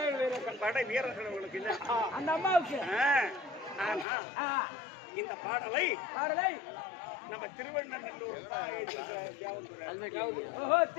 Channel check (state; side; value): drops out; right; at 4.0 s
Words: படை வீரர்கள் உங்களுக்கு இல்ல அந்த அம்மாவுக்கு. இந்த பாடலை நம்ம திருவண்ணநல்லூர்